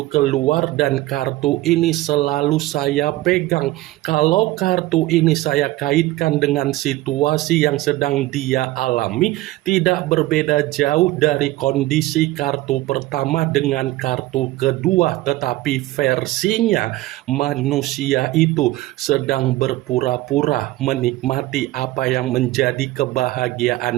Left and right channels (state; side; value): quieter; left; 17.4 dB